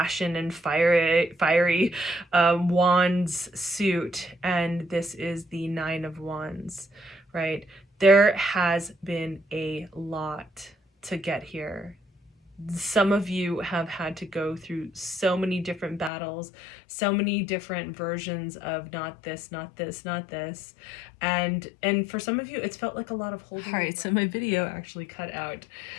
and fiery wands suit, and this is the 9 of Wands, right? There has been a lot to get here. Some of you have had to go through so many different battles, so many different versions of not this, not this, not this. And for some of you, it's felt like a lot of holding. All right, so my video actually cut out.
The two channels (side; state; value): right; drops out; at 16.1 s